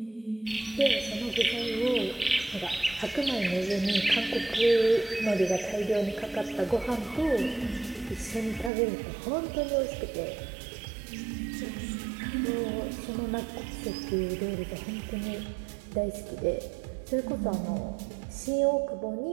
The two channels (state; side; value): drops out; left; at 8.7 s